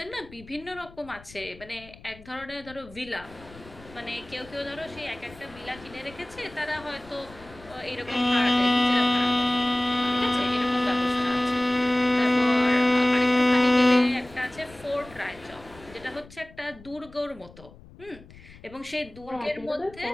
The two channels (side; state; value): left; noise; rumble, 21 dB below the sound